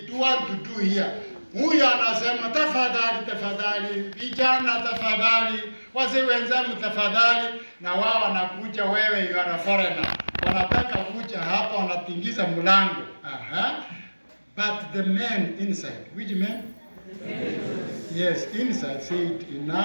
do want to do here. Huyu anasema tafadhali, vijana tafadhali, wazee wenzangu tafadhali, na wao wanakuja, wewe you are a foreigner. Wanataka kuja hapa, wanatingiza mlango. But the men inside, which men? Yes, inside said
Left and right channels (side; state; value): both; inverted; correlation -1.00